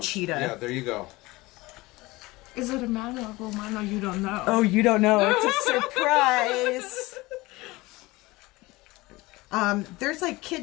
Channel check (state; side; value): quieter; right; 21.1 dB